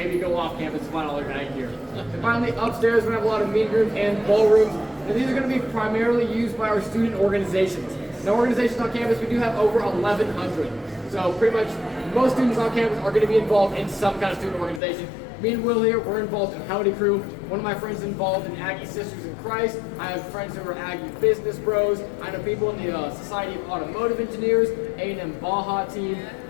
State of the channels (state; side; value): drops out; right; at 14.8 s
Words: go off campus and find all your Aggie gear. And finally, upstairs, we're gonna have a lot of meeting rooms and ballrooms. And these are gonna be primarily used by our student organizations. Now, organizations on campus, we do have over 1,100. So pretty much most students on campus are going to be involved in some kind of student organization. Me and Will here, we're involved in Howdy Crew. One of my friends is involved in Aggie Sisters in Christ. I have friends who are Aggie Business Bros. I know people in the Society of Automotive Engineers, A&M Baja team,